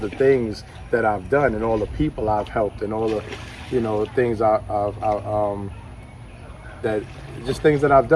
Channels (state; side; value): identical; both; correlation 1.00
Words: the things that I've done and all the people I've helped and all the, you know, things things that I've